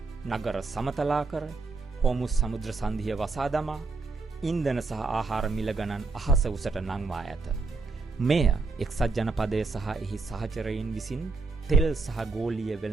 නගර සමතලා කර, හෝමුස් සමුද්‍ර සන්ධිය වසා දමා, ඉන්ධන සහ ආහාර මිල ගණන් අහස උසට නංවා ඇත. මෙය එක්සත් ජනපදය සහ එහි සහචරයින් විසින් තෙල් සහ ගෝලීය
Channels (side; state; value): left; quieter; 4.0 dB